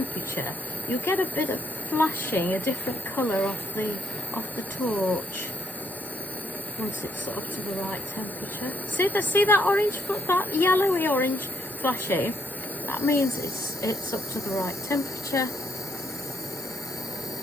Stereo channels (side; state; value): both; normal; correlation 0.74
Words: you get a bit of flashing, a different colour off the torch. Once it's up to the right temperature. See that orange, that yellowy orange flashing? That means it's up to the right temperature.